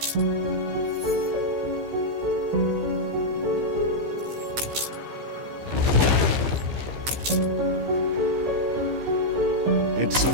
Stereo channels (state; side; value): late; left; 15 ms